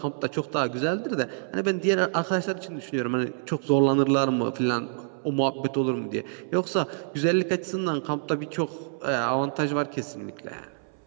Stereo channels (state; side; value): silent; left; 60 dB below the other